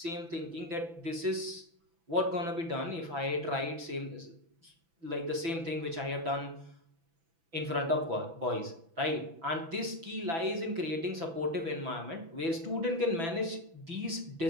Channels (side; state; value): left; late; 6.0 ms